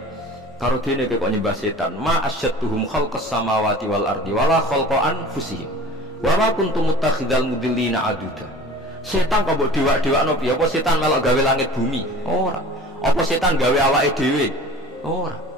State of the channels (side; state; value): both; normal; correlation 0.41